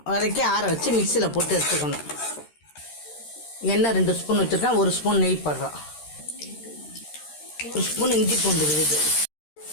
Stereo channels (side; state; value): right; late; 13 ms